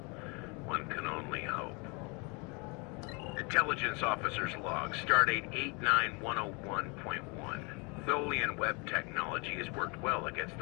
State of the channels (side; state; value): right; quieter; 30.8 dB